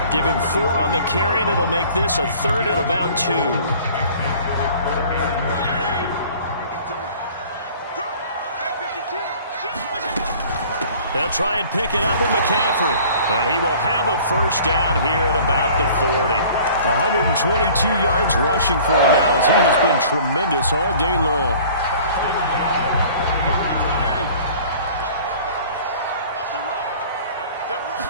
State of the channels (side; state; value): both; inverted; correlation -0.49